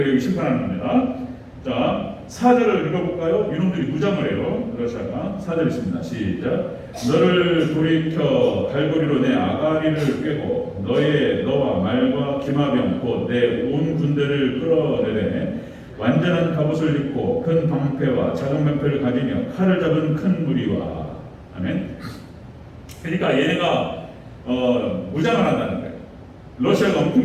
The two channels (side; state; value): both; identical; correlation 1.00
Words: 여기 심판하는 겁니다. 자 4절을 읽어볼까요? 이놈들이 무장을 해요. 러시아가 4절 있습니다. 시작. 너를 돌이켜 갈고리로 내 아가리를 꿰고 너와 말과 기마병 곧 내 온 군대를 끌어내되 완전한 갑옷을 입고 큰 방패와 작은 방패를 가지며 칼을 잡은 큰 무리와 아멘. 그러니까 얘네가 무장을 한다는 거예요. 러시아가